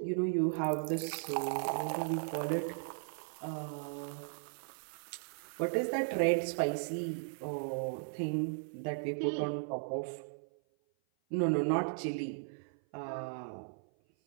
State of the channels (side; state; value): left; silent; 53 dB below the other